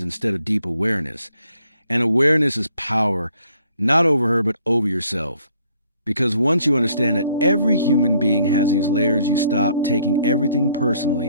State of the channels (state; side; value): inverted; both; correlation -0.64